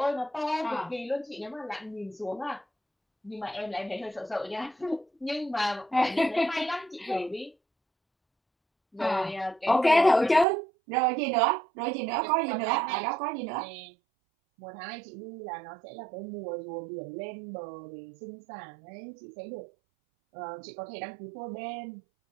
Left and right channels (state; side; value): drops out; left; at 10.5 s